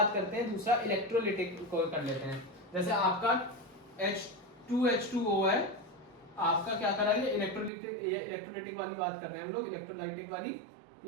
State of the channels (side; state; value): left; drops out; at 7.7 s